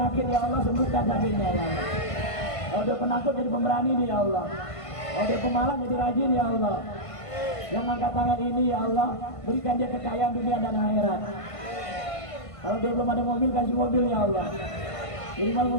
ya Allah, sembuhkan sakitnya ya Allah. Kalau dia penakut jadi pemberani dia ya Allah. Kalau dia pemalas jadi rajin ya Allah. Yang angkat tangan ini ya Allah, berikan dia kekayaan dunia dan akhirat. Kalau dia belum ada mobil, kasih mobil ya Allah. Minimal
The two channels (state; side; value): late; right; 1.5 ms